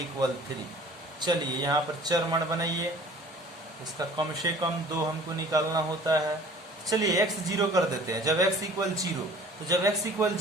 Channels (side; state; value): both; normal; correlation 0.48